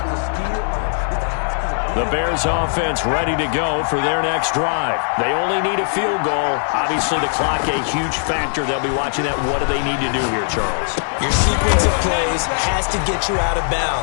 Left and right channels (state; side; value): silent; right; digital silence